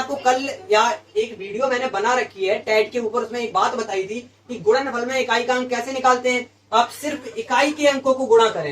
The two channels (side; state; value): both; identical; correlation 1.00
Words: कल या एक वीडियो मैंने बना रखी है टैट के ऊपर, उसमें एक बात बताई थी कि गुणनफल में इकाई का अंक कैसे निकालते हैं। आप सिर्फ इकाई के अंकों को गुणा